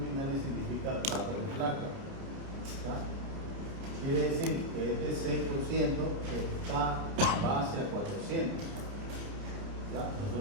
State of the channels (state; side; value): late; left; 29 ms